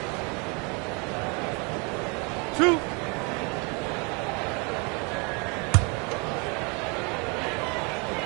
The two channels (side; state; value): left; quieter; 31.6 dB